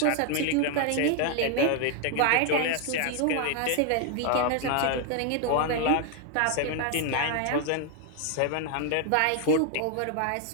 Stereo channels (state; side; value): different; both; correlation 0.00